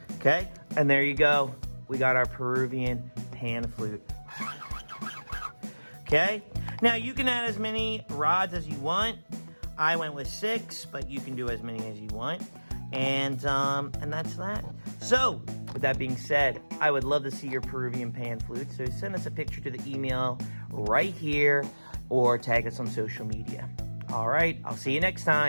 Okay, and there you go. We got our Peruvian pan flute. Okay, now you can add as many rods as you want. I went with 6, but you can do as many as you want. And that's that. So, with that being said, I would love to see your Peruvian pan flute. So send us a picture to the email right here or tag us on social media. All right, I'll see you next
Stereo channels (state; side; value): inverted; both; correlation -1.00